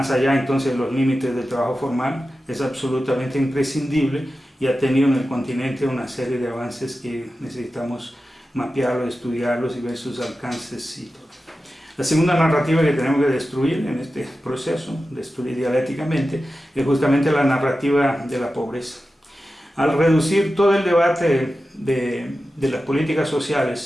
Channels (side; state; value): both; normal; correlation 0.93